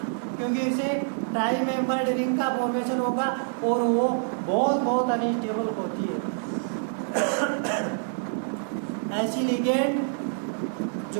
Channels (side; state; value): left; silent; 60 dB below the other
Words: क्योंकि इसे ट्राई मेंबर्ड रिंग का फॉर्मेशन होगा और वो बहुत अनस्टेबल होती है। ऐसी लिगेंड